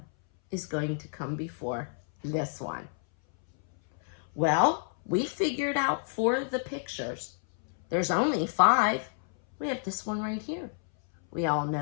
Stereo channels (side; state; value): right; silent; 58 dB below the other